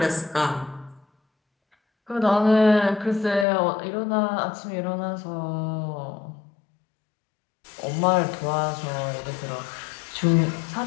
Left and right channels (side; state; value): right; drops out; at 3.5 s